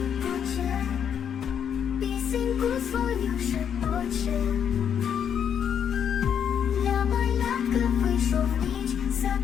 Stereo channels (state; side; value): quieter; right; 8.3 dB